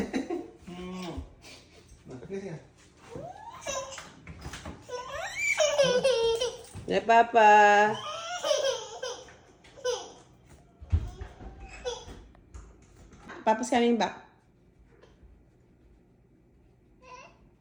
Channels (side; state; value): both; identical; correlation 1.00